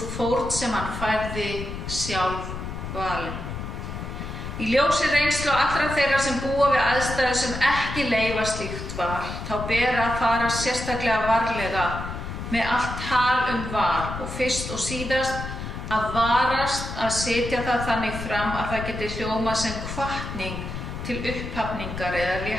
fórn sem hann færði sjálf valin. Í ljósi reynslu allra þeirra sem búa við aðstæður sem ekki leyfa slíkt val, þá ber að fara sérstaklega varlega með allt tal val og fyrst og síðast að varast að setja það þannig fram að það geti hljómað sem hvatning til upphafningar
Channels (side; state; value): left; noise; rumble, 7 dB below the sound